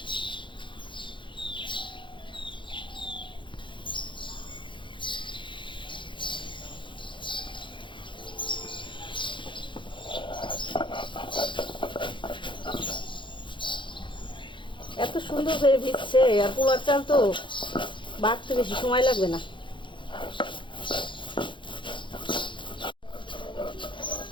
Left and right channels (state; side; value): late; right; 0.23 ms